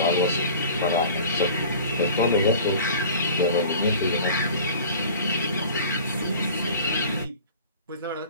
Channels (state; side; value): inverted; both; correlation -0.42